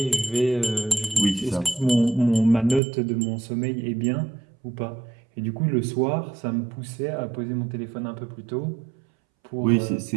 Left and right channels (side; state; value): left; drops out; at 2.8 s